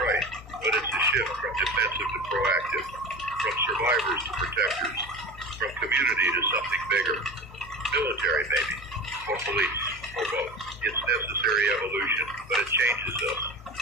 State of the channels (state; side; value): normal; both; correlation 0.31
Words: right, but it's a shift from defensive to proactive, from survivors to protectors, from community to something bigger. Military, maybe, or police, or both. It's necessary evolution, but it changes us,